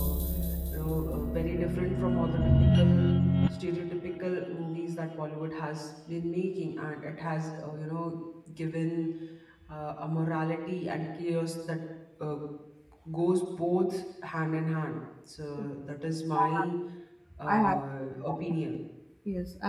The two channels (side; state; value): both; identical; correlation 1.00